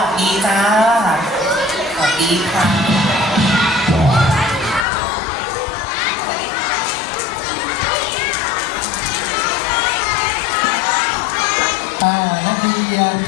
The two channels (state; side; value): drops out; right; at 4.9 s